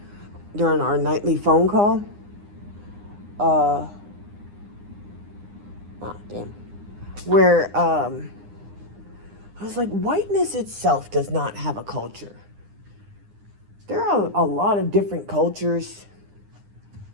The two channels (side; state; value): left; late; 9.8 ms